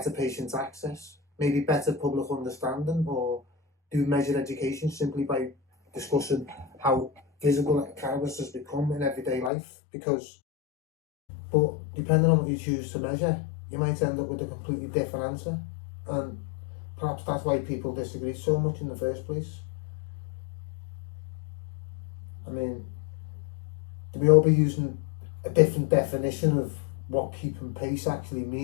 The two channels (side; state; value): right; drops out; at 9.5 s